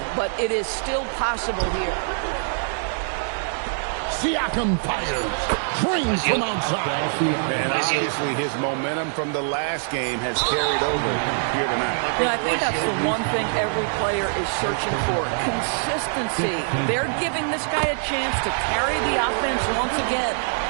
but it is still possible here. Siakam fires. Trains from outside. And obviously his momentum from the last game has carried over here tonight. Yeah, I think that's the one thing every player is searching for. Consistency. They're giving this guy a chance to carry the offense once again.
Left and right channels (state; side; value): silent; left; digital silence